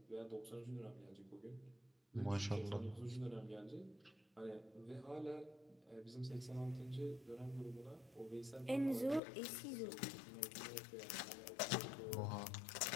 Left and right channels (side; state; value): right; drops out; at 9.2 s